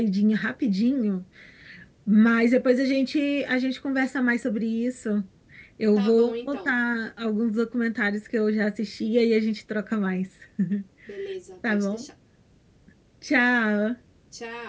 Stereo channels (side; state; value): both; identical; correlation 1.00